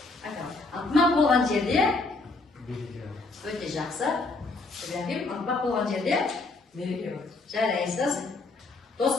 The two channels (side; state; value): right; quieter; 3.4 dB